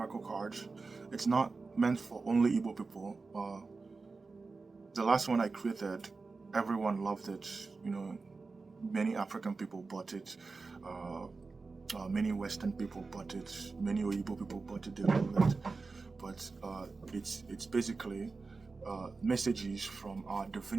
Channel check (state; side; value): quieter; left; 4.1 dB